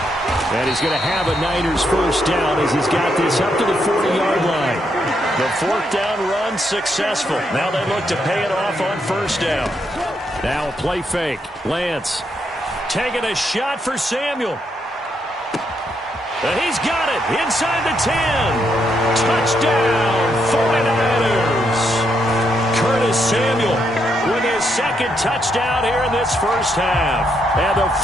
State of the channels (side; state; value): both; normal; correlation 0.78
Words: And he's going to have a Niners 1st down as he's got this up to the 40-yard line. The 4th down run successful. Now they look to pay it off on 1st down. Now a play fake. Lance taking a shot for Samuel. And he's got it inside the 10. Touchdown, 49ers. Curtis Samuel with his 2nd touchdown here in this first half. And the